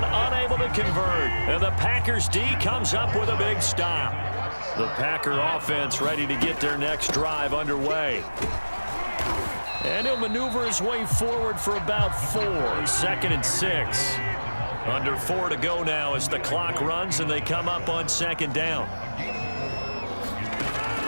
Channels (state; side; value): inverted; both; correlation -1.00